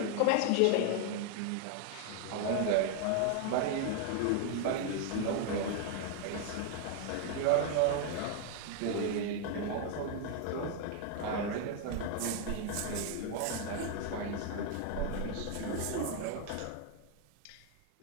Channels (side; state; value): both; different; correlation 0.00